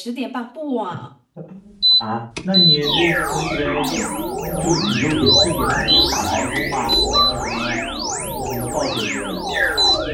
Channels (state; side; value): identical; both; correlation 1.00